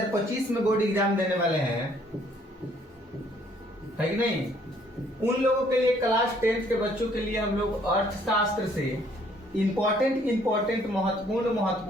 में बोर्ड एग्जाम देने वाले हैं, है कि नहीं, उन लोगों के लिए क्लास 10th के बच्चों के लिए हम लोग अर्थशास्त्र से इम्पोर्टेंट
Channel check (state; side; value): normal; both; correlation 0.63